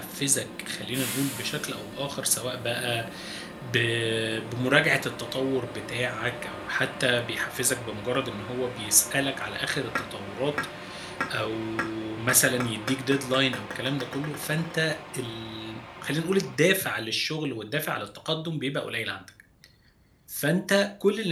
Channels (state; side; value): identical; both; correlation 1.00